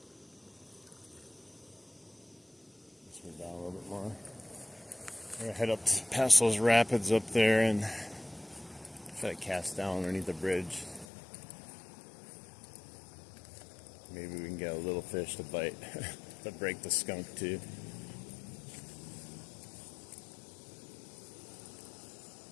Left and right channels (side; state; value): right; drops out; at 11.1 s